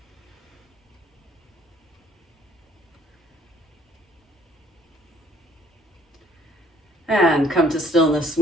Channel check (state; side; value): normal; both; correlation 0.61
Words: And come to stillness.